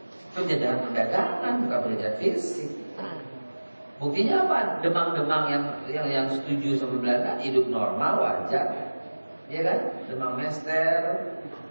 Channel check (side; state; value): both; inverted; correlation -1.00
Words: Penjajahan perdagangan, bukan penjajahan fisik. Buktinya apa? Demang-demang yang setuju sama Belanda hidup normal, wajar. Ya kan? Demang Mester.